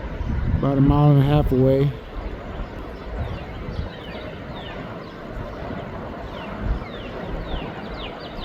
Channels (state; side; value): identical; both; correlation 1.00